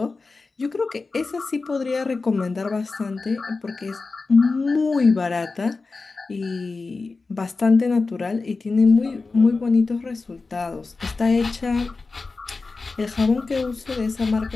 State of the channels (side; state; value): right; quieter; 4.0 dB